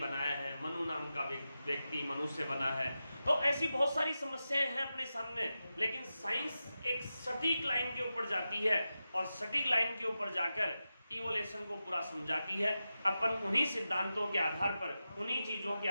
है, मनु नाम का व्यक्ति मनुष्य बना है। तो ऐसी बहुत सारी समस्याएं हैं अपने सामने, लेकिन साइंस एक सटीक लाइन के ऊपर जाती है और सटीक लाइन के ऊपर जाकर इवोल्यूशन को पूरा समझाती है। अपन उन्हीं सिद्धांतों के आधार पर, उन्हीं चीजों के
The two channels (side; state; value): both; inverted; correlation -0.92